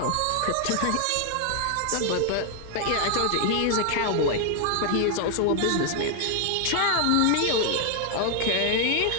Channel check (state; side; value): different; both; correlation 0.00